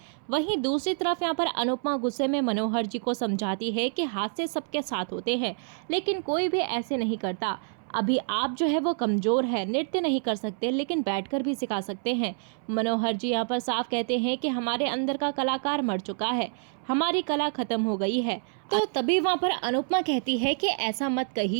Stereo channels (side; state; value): left; silent; 60 dB below the other